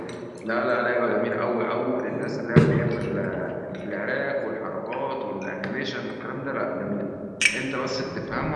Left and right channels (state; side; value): identical; both; correlation 1.00